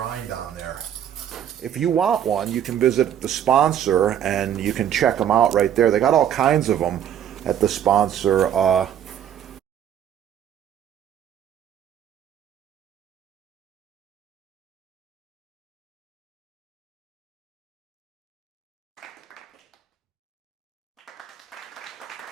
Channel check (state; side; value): quieter; left; 9.8 dB